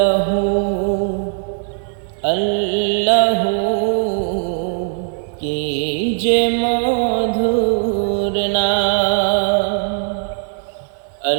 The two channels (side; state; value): left; silent; digital silence